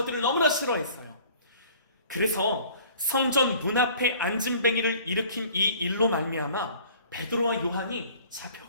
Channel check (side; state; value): both; inverted; correlation -0.51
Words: 너무나 싫어했어요. 그래서 성전 문 앞에 앉은뱅이를 일으킨 이 일로 말미암아 베드로와 요한이